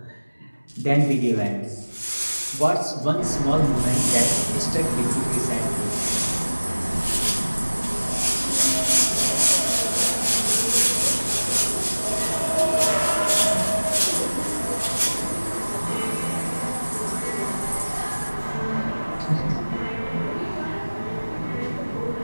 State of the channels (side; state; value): both; inverted; correlation -1.00